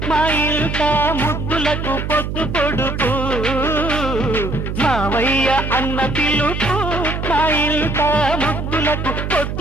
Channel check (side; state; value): right; noise; hum, 4 dB below the sound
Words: మా ఇల్ట ముద్దులకు పొద్దు పొడుపు మావయ్య అన్న పిలుపు మా ఇల్ట ముద్దులకు